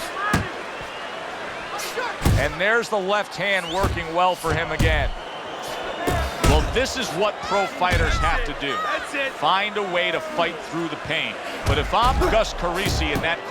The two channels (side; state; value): both; identical; correlation 1.00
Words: And there's the left hand working well for him again. Well, this is what pro fighters have to do. Find a way to fight through the pain. But if I'm Gus Carisi in that